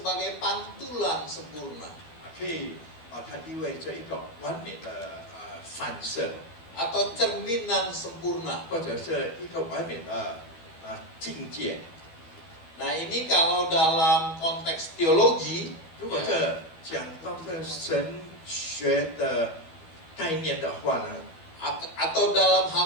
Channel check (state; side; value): late; right; 13 ms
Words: pantulan sempurna 可以把它意味着一个完美的反射， atau cerminan sempurna. 或者是一个完美的境界。 Nah, ini kalau dalam konteks teologi 如果这讲到这神学的概念的话呢， atau dalam